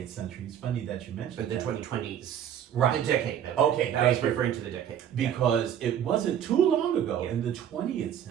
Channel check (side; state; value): left; quieter; 9.6 dB